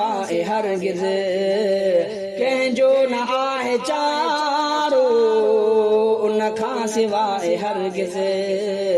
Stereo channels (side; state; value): both; identical; correlation 1.00